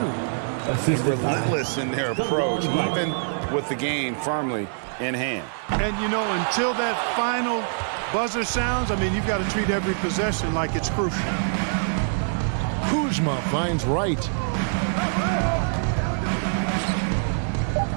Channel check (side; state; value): left; silent; digital silence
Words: Relentless in their approach, even with the game firmly in hand. And, you know, until that final buzzer sounds, I mean, you've got to treat every possession like it's crucial. Kuzma finds Wright.